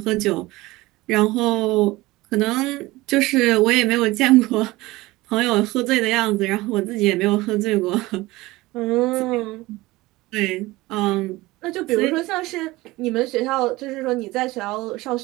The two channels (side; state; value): left; quieter; 19.8 dB